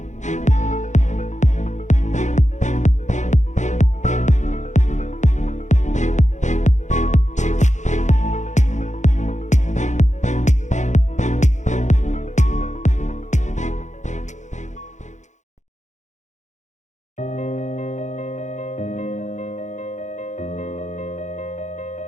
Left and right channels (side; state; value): right; late; 0.35 ms